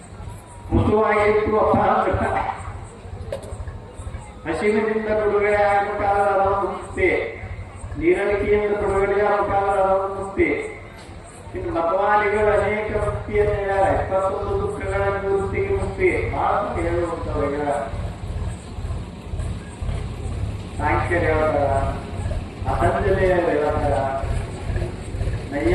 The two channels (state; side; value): identical; both; correlation 1.00